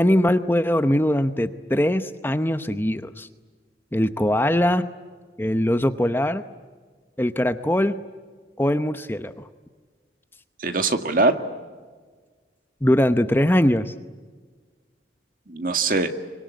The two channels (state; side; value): normal; both; correlation 0.78